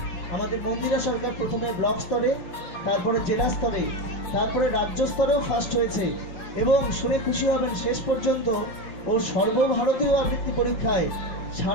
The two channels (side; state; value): right; late; 5.6 ms